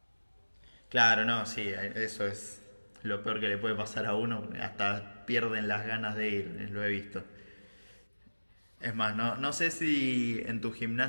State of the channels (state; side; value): inverted; both; correlation -1.00